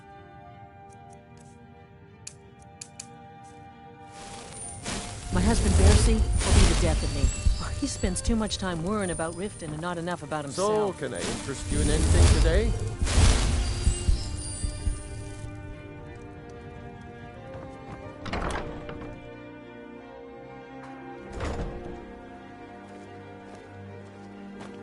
My husband Bercy will be the death of me. He spends too much time worrying about Riften and not enough about himself. So, can I interest you in anything today?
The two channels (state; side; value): identical; both; correlation 1.00